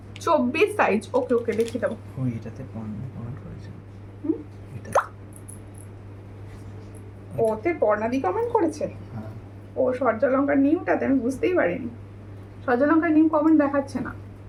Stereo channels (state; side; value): identical; both; correlation 1.00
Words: 24 সাইজ। ওকে ওকে দেখিয়ে দেবো। এটাতে কমেন্ট করেছে, ওতে পর্ণাদি কমেন্ট করেছে। ও সূর্যলঙ্কার নিউটাতে আমি বুঝতেই পারিনি। সূর্যলঙ্কার নিউ কমেন্ট দেখাচ্ছে না।